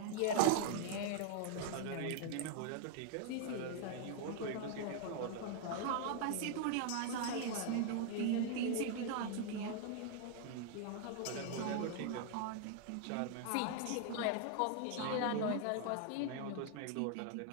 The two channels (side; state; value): both; different; correlation 0.00